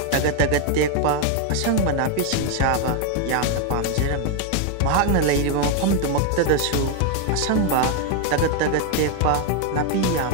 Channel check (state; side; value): different; both; correlation 0.01